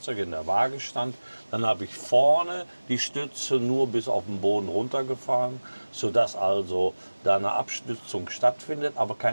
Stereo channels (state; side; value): inverted; both; correlation -1.00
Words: in der Waage stand, dann habe ich vorne die Stütze nur bis auf den Boden runtergefahren, sodass also da eine Abstützung stattfindet, aber